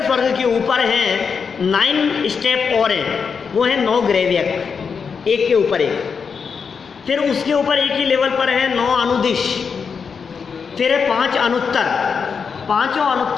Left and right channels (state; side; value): quieter; right; 5.9 dB